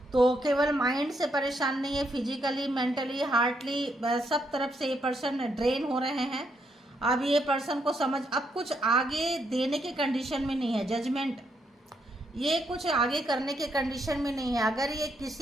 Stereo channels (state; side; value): normal; both; correlation 0.77